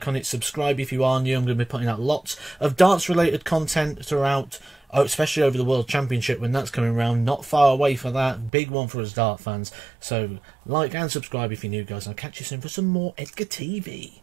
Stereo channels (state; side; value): drops out; left; at 8.5 s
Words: on it, subscribe if you are new. I'm going to be putting out lots of darts related content throughout, especially over the World Championship when that's coming around. Not far away for that. Big one for us dart fans. So like and subscribe if you're new, guys. I'll catch you soon for some more Edgar TV.